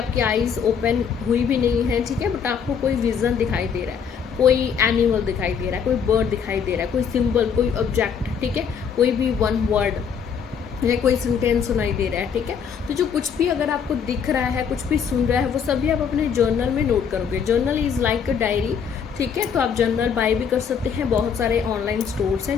आईज ओपन हुई भी नहीं है, ठीक है, बट आपको कोई विजन दिखाई दे रहा है, कोई एनिमल दिखाई दे रहा है, कोई बर्ड दिखाई दे रहा है, कोई सिंबल, कोई ऑब्जेक्ट, ठीक है, कोई भी वन वर्ड या कोई सेंटेंस सुनाई दे रहा है। ठीक है, तो जो कुछ भी अगर आपको दिख रहा है, कुछ भी सुन रहा है, वो सभी आप अपने जर्नल में नोट करोगे। Journal is like a diary. ठीक है, तो आप जर्नल बाय भी कर सकते हैं, बहुत सारे ऑनलाइन स्टोर्स हैं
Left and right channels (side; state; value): right; quieter; 7.0 dB